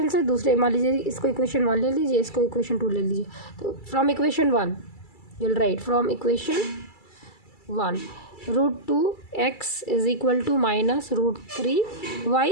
से दूसरे, मान लीजिए इसको इक्वेशन 1 ले लीजिए, इसको इक्वेशन 2 ले लीजिए। तो from equation 1 you'll write, from equation 1 √2x is equal to minus √3y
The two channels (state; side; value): late; right; 2.3 ms